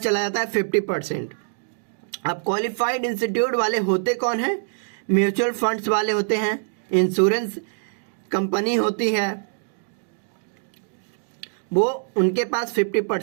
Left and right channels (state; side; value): silent; left; digital silence